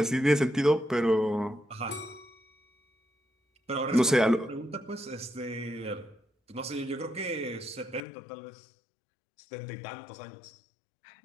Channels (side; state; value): right; drops out; at 8.0 s